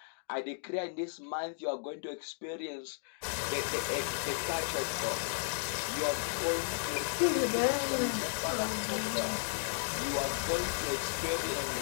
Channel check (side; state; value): right; silent; digital silence